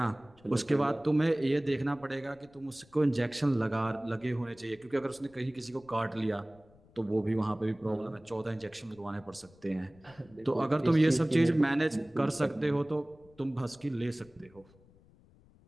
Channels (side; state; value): left; noise; rumble, 27 dB below the sound